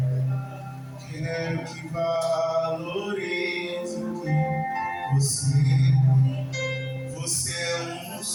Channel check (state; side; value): identical; both; correlation 1.00